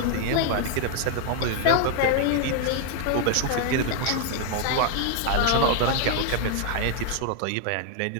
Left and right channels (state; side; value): different; both; correlation 0.00